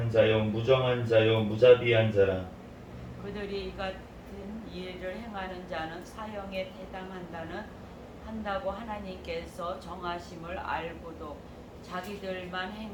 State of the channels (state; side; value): identical; both; correlation 1.00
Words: 자요, 무정한 자요, 무자비한 자라. 그들이 이 같은 일을 행하는 자는 사형에 한다고 하나님께서 정하심을 알고도 자기들만